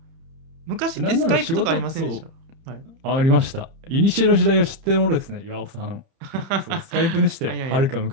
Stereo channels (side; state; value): left; late; 30 ms